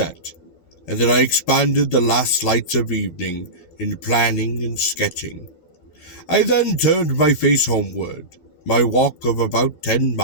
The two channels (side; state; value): right; late; 12 ms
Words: and that I expanded the last lights of evening in planning and sketching. I then turned my face homeward. My walk of about 10